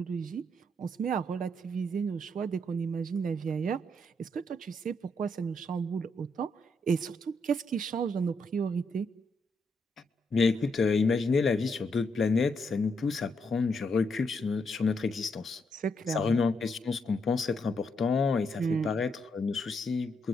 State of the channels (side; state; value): both; normal; correlation 0.78